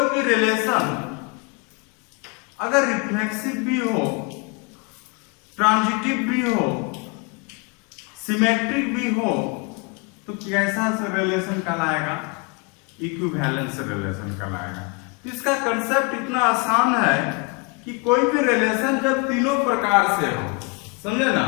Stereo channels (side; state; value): right; quieter; 31.1 dB